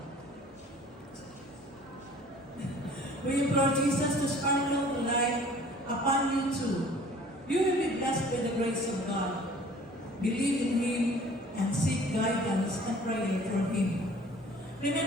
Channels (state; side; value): normal; both; correlation 0.50